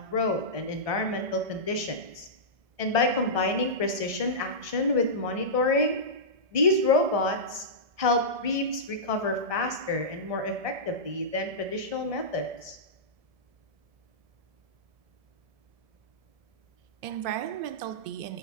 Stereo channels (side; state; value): left; late; 1.2 ms